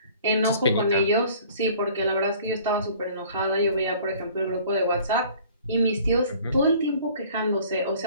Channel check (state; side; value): inverted; both; correlation -0.51